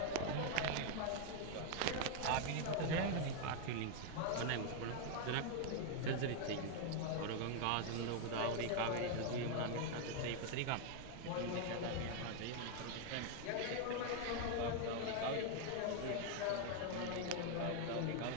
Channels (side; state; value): both; different; correlation 0.00